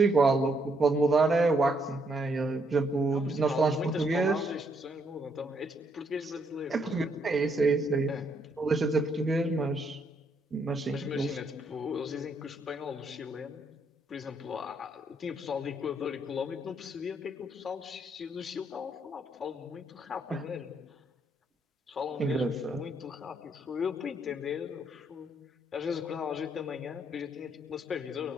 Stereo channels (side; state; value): both; normal; correlation 0.73